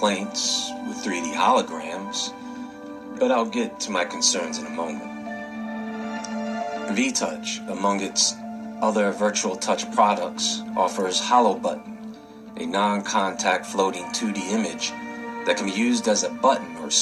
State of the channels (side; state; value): both; identical; correlation 1.00